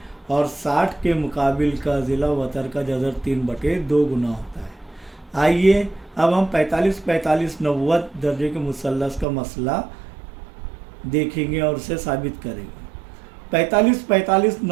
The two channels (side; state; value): left; drops out; at 9.2 s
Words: और 60 के मुकाबिल का ज़िला वतर का जज़र 3/2 गुना होता है। आइए अब हम 45, 45, 90 दर्जे के मुसल्लस का मसला देखेंगे और उसे साबित करेंगे। 45, 45,